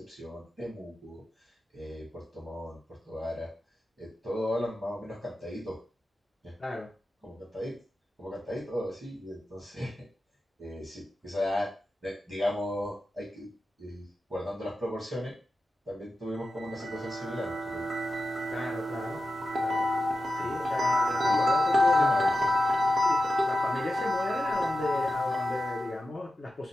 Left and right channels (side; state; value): both; normal; correlation 0.91